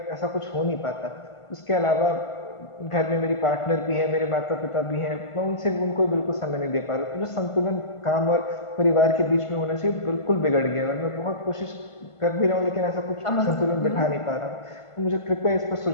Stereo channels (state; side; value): late; right; 1.5 ms